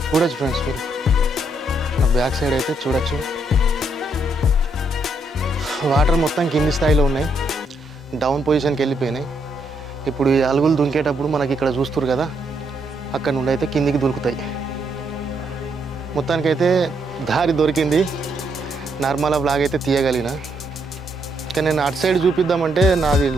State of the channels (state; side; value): normal; both; correlation 0.75